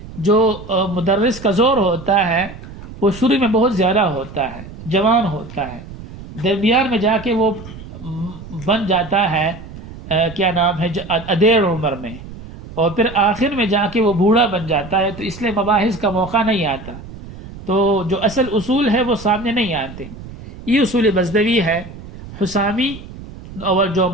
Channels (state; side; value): noise; right; rumble, 14 dB below the sound